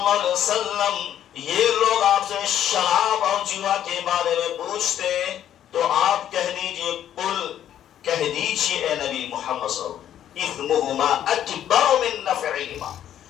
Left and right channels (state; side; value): quieter; right; 10.8 dB